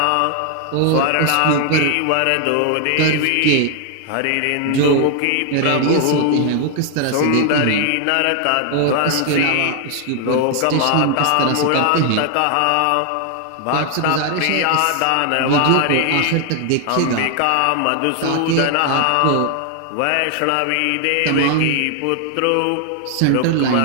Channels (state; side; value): different; both; correlation 0.00